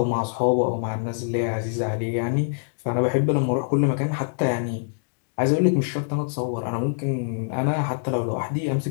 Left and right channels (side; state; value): right; silent; digital silence